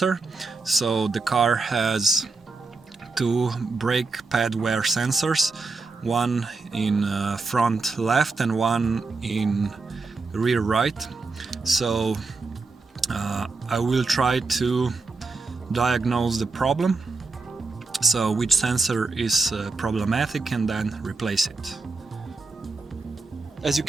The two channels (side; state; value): left; quieter; 4.0 dB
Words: so the car has two brake pad wear sensors, one in front left and one in rear right. So I will try to diagnose the problem, so which sensor is problematic, and then replace it. As you